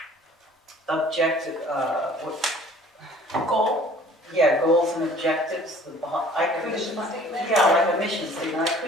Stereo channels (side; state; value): both; normal; correlation 0.52